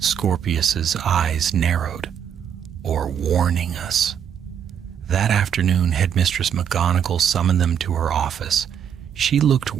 eyes narrowed. "Or warning us." That afternoon, Headmistress McGonagall summoned them to her office. She looked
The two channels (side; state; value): left; quieter; 8.6 dB